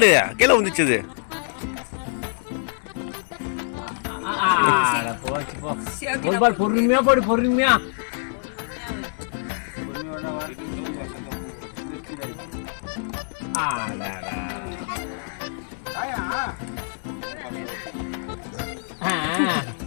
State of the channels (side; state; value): right; silent; 58 dB below the other